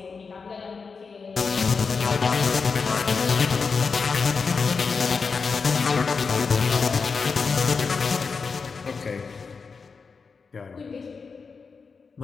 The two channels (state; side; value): quieter; right; 5.0 dB